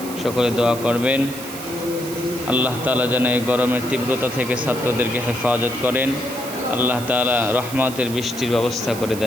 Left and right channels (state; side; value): noise; right; hiss, 12 dB below the sound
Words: সকলে দোয়া করবেন। আল্লাহ তাআলা যেন এই গরমের তীব্রতা থেকে ছাত্রদেরকে হেফাজত করেন। আল্লাহ তাআলা রহমতের বৃষ্টির ব্যবস্থা করে